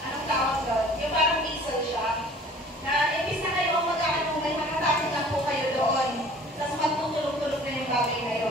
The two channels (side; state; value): both; normal; correlation 0.49